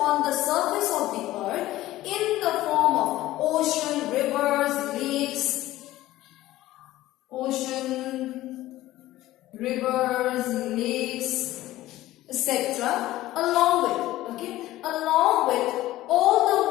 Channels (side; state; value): right; quieter; 15.8 dB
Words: the surface of the earth in the form of ocean, rivers, lakes, etc. along with all the